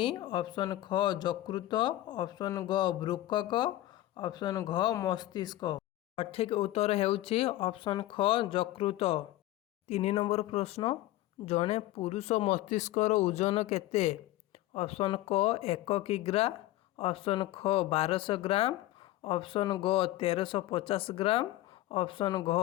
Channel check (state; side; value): quieter; right; 15.8 dB